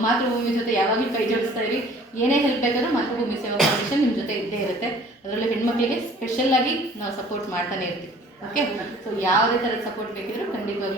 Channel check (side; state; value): both; normal; correlation 0.51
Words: ಮಾತೃಭೂಮಿ ಜೊತೆ ಯಾವಾಗಲೂ ಕೈ ಜೋಡಿಸ್ತಾ ಇರಿ. ಏನೇ ಹೆಲ್ಪ್ ಬೇಕಾದ್ರೂ ಮಾತೃಭೂಮಿ ಸೇವಾ ಫೌಂಡೇಶನ್ ನಿಮ್ಮ ಜೊತೆ ಇದ್ದೇ ಇರುತ್ತೆ. ಅದರಲ್ಲೂ ಹೆಣ್ಮಕ್ಳಿಗೆ ಸ್ಪೆಷಲ್ಲಾಗಿ ನಾವು ಸಪೋರ್ಟ್ ಮಾಡ್ತಾನೆ ಇರ್ತೀವಿ. ಓಕೆ? ಸೊ ಯಾವುದೇ ಥರದ ಸಪೋರ್ಟ್ ಬೇಕಿದ್ರು